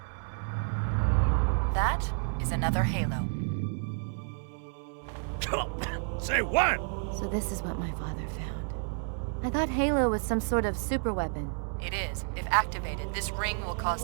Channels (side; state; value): left; silent; 58 dB below the other